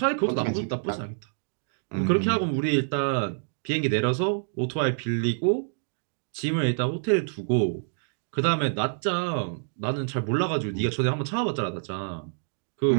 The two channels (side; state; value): left; silent; digital silence